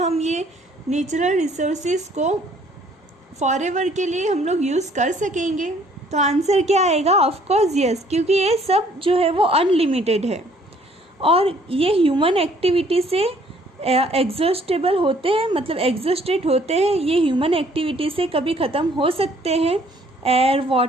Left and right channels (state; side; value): normal; both; correlation 0.61